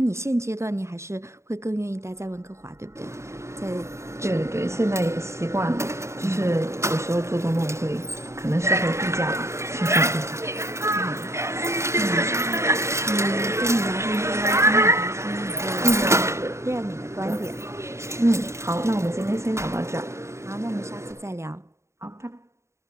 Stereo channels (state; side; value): late; left; 0.14 ms